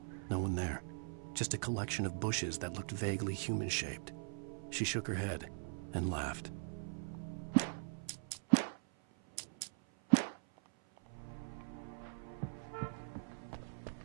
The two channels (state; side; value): silent; left; 50 dB below the other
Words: No one there. Just a collection of bushes that looked vaguely human-shaped. She shook her head and laughed.